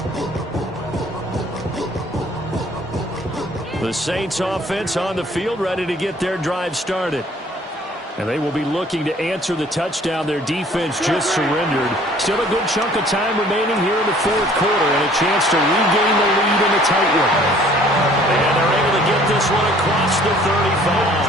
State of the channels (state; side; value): normal; both; correlation 0.55